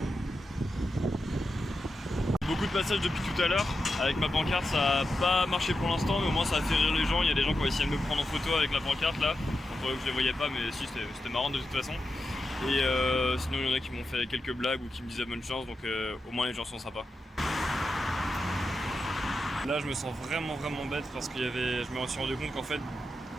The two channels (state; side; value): normal; both; correlation 0.88